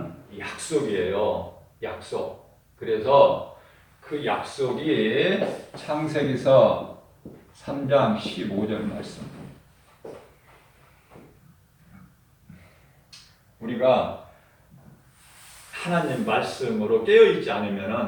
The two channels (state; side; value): identical; both; correlation 1.00